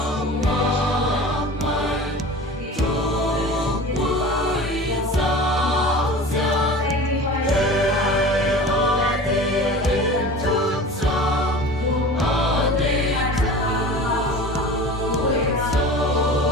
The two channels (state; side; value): normal; both; correlation 0.37